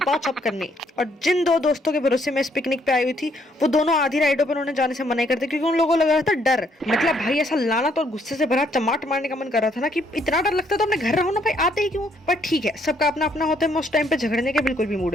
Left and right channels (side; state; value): both; normal; correlation 0.69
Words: करने। और जिन 2 दोस्तों के भरोसे मैं इस पिकनिक पे आई हुई थी वो दोनों आधी राइडों पर उन्होंने जाने से मना कर दिया क्योंकि उन लोगों को लग रहा था डर। मतलब भाई ऐसा लानत और गुस्से से भरा चमाट मारने का मन कर रहा था ना कि इतना डर लगता है तो अपने घर रहो ना भाई, आते ही क्यों। पर ठीक है, सबका अपना अपना होता है। मैं उस टाइम पे झगड़ने के बिल्कुल भी मूड